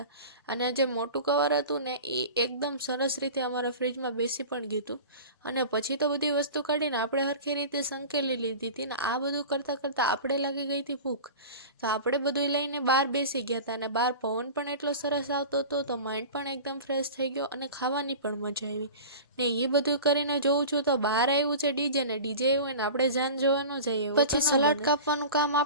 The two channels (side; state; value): both; inverted; correlation -0.35